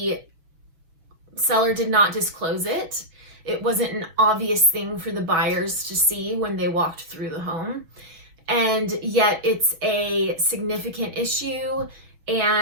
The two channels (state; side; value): late; left; 6.1 ms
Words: seller did not disclose it. It wasn't an obvious thing for the buyers to see when they walked through the home. And yet it's a significant issue,